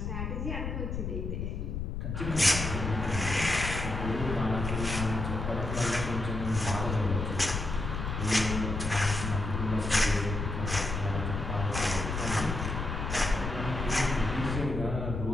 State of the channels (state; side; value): noise; left; rumble, 3 dB below the sound